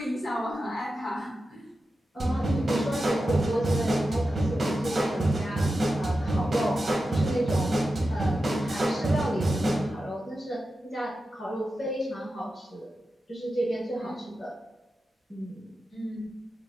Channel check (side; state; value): both; normal; correlation 0.91